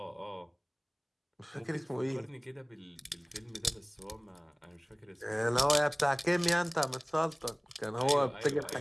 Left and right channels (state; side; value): identical; both; correlation 1.00